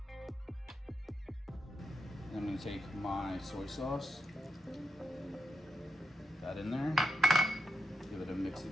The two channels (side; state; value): both; normal; correlation 0.84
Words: I'm going to take my soy sauce, that in there, give it a mix